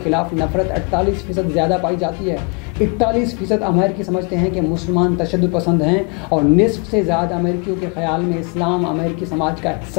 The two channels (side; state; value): right; quieter; 33.2 dB